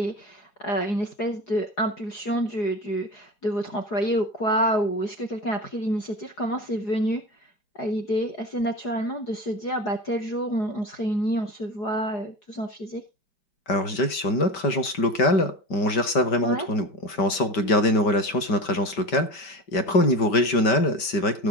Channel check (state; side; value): late; right; 5.1 ms